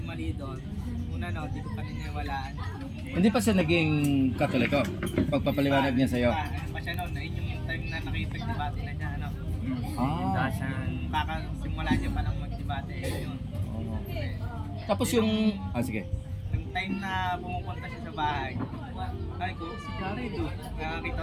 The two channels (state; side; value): identical; both; correlation 1.00